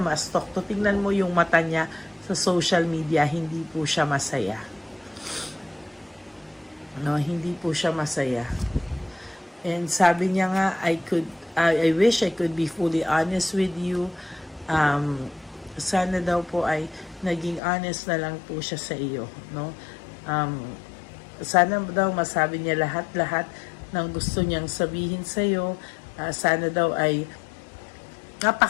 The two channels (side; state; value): right; drops out; at 17.6 s